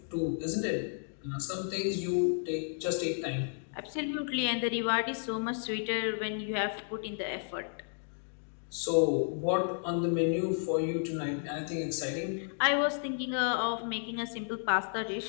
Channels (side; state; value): right; silent; digital silence